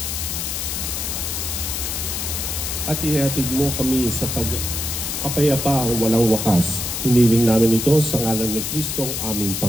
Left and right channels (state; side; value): noise; left; hiss, 3 dB below the sound